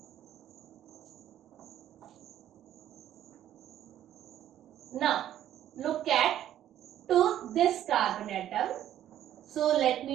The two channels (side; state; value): left; quieter; 11.7 dB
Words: Now look at to this carbon atom. So let